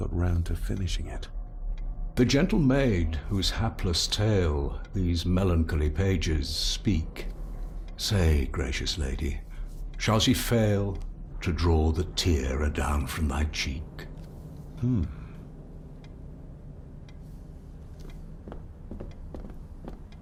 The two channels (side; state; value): both; identical; correlation 1.00